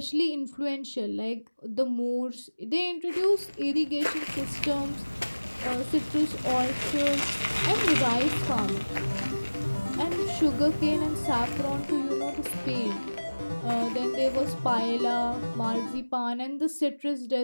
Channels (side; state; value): both; inverted; correlation -1.00